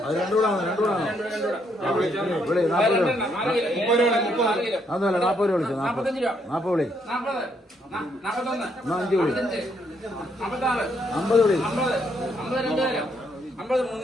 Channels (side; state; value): both; normal; correlation 0.73